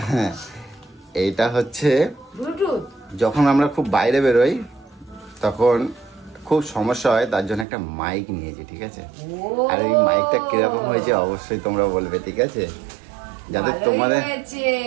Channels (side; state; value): left; drops out; at 7.7 s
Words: এইটা হচ্ছে ব্লুটুথ। যখন আমরা খুব বাইরে বেরোই তখন খুব সমস্যা হয়, তার জন্য একটা মাইক নিয়েছি, ঠিক আছে? আর এই মাইকটা কিরকম হয়েছে অবশ্যই তোমরা বলবে, ঠিক আছে? যাতে তোমাদের